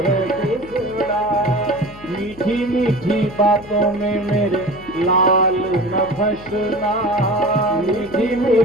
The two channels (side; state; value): left; noise; hum, 20 dB below the sound